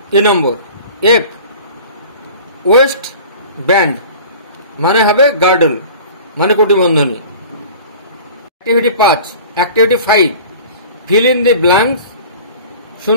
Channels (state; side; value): inverted; both; correlation -0.42